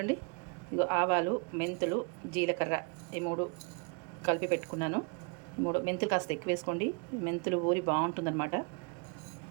ఇదిగో ఆవాలు, మెంతులు, జీలకర్ర ఈ 3 కలిపి పెట్టుకున్నాను. 3 మెంతులు కాస్త ఎక్కువ వేసుకోండి, మెంతులు ఊరి బాగుంటుందన్నమాట.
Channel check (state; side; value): quieter; left; 34.8 dB